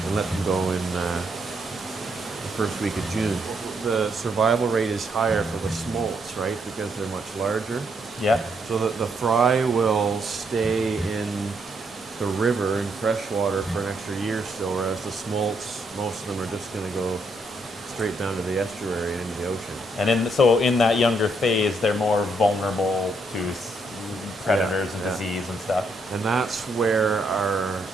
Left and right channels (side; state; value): both; normal; correlation 0.75